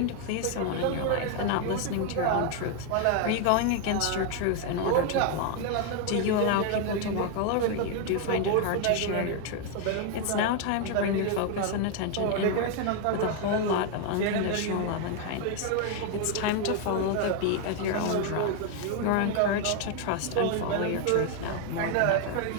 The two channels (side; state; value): both; different; correlation 0.01